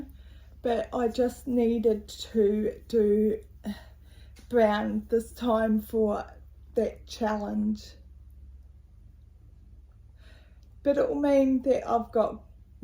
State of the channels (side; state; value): both; identical; correlation 1.00